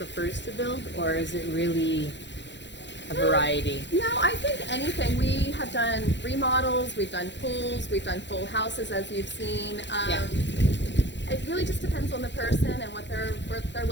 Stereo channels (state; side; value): late; right; 0.52 ms